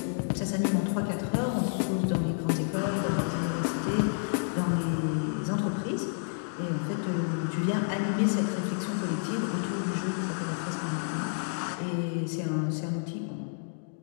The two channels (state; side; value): silent; right; digital silence